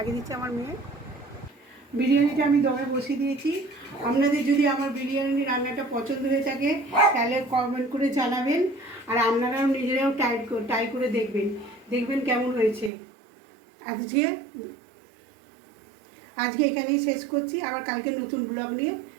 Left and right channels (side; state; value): left; drops out; at 12.9 s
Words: দিচ্ছে আমার মেয়ে। বিরিয়ানিটা আমি দমে বসিয়ে দিয়েছি। আপনাদের যদি আমার বিরিয়ানি রান্নাটা পছন্দ হয়ে থাকে তাহলে কমেন্ট করে জানাবেন, আর আপনারাও নিজেরাও ট্রাই করে দেখবেন কেমন হয়েছে। আজকে এখানেই শেষ করছি, আবার কালকে নতুন ব্লগ নিয়ে